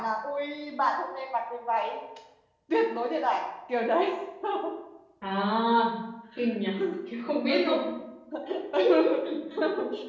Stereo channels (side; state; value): both; identical; correlation 1.00